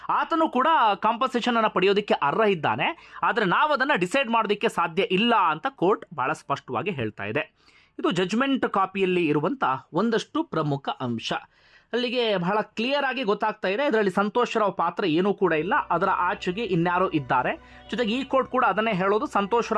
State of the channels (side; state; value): both; identical; correlation 1.00